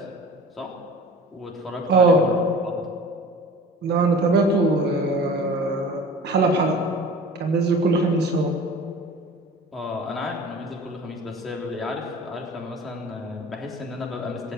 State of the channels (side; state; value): both; normal; correlation 0.41